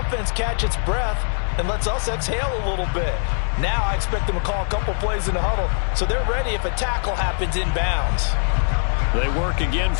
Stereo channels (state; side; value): silent; right; 64 dB below the other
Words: catch its breath and lets us exhale a little bit. Now I expect them to call a couple plays in the huddle, so they're ready if a tackle happens inbounds. They work again